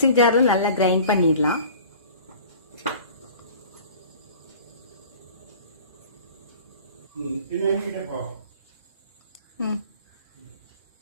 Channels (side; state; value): both; inverted; correlation -0.44